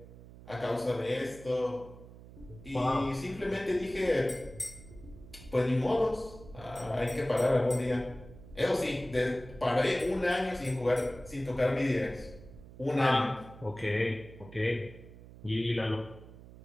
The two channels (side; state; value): right; noise; hum, 18 dB below the sound